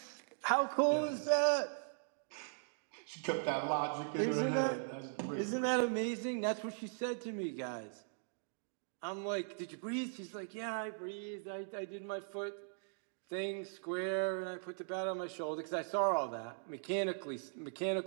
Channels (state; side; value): silent; left; digital silence